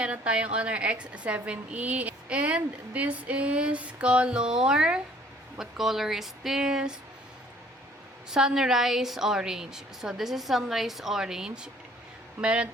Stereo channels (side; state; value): both; normal; correlation 0.57